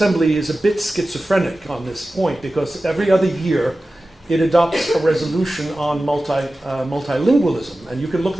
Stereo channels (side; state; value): both; normal; correlation 0.95